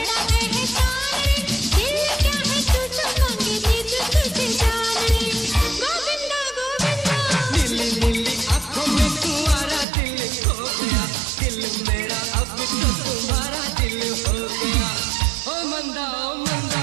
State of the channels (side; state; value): left; drops out; at 9.9 s